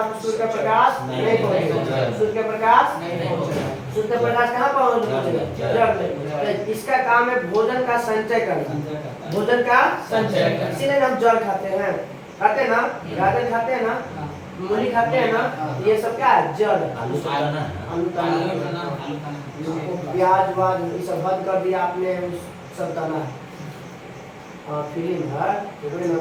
सूर्य का प्रकाश नहीं पहुँचेगा, सूर्य का प्रकाश नहीं पहुँचेगा, सूर्य का प्रकाश कहाँ पहुँचेगा? जड़ में। तो इसका काम है भोजन का संचय करना, भोजन का संचय। इसीलिए हम जल खाते हैं, खाते हैं ना, गाजर खाते हैं ना, मूली खाते हैं ना, ये सब क्या है? जड़। आलू खाना, प्याज वाज ये सब बंद कर दिया आपने, सब करना है। फिल्म है तो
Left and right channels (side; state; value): both; identical; correlation 1.00